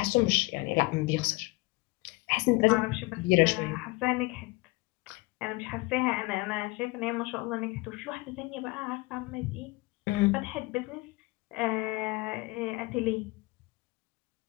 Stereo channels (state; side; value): quieter; right; 23.4 dB